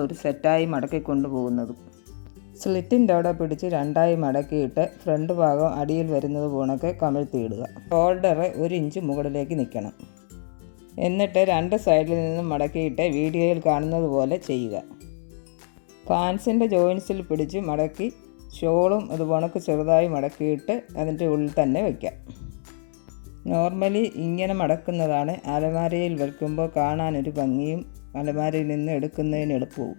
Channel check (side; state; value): right; silent; 62 dB below the other